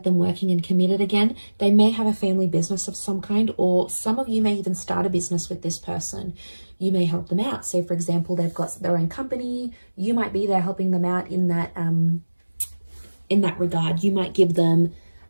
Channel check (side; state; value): both; inverted; correlation -1.00